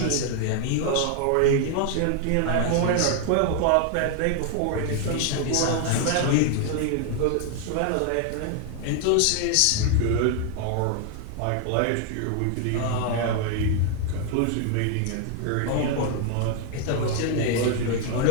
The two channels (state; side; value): different; both; correlation 0.00